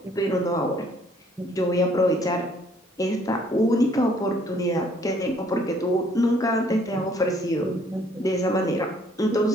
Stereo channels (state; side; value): normal; both; correlation 0.62